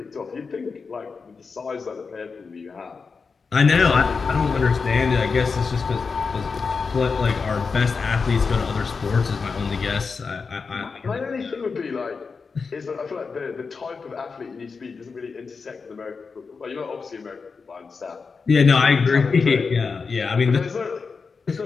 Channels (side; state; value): right; quieter; 4.9 dB